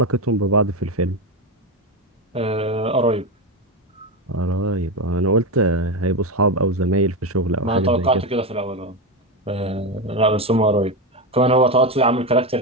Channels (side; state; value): both; normal; correlation 0.14